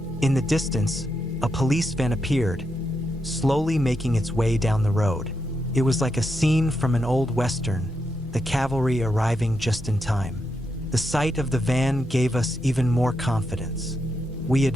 in the distance, a police van appeared, slowly making its way down the road. It was like a scene from an old western, the cavalry arriving just in time. The sight of the van gave us even more confidence. We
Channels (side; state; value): both; normal; correlation 0.83